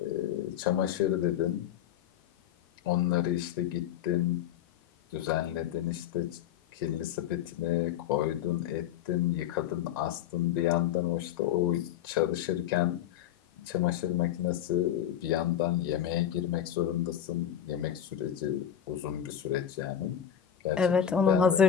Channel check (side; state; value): right; quieter; 9.9 dB